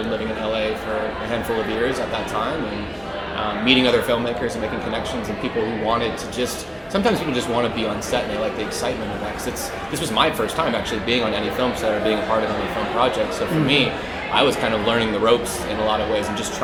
living in LA for a handful of years at that time, and meeting other filmmakers and making connections and people who wanted to just, sometimes people just want to be on set and they like the excitement of that, because this was my first time actually being on any film set or being a part of any film project. So for me, I was kind of learning the ropes in a lot of ways and just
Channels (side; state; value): both; identical; correlation 1.00